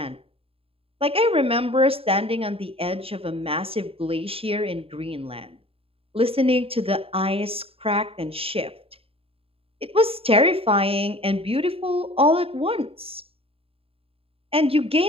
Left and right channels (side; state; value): left; late; 0.27 ms